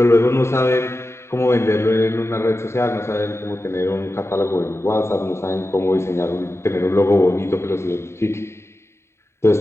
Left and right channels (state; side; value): late; right; 0.13 ms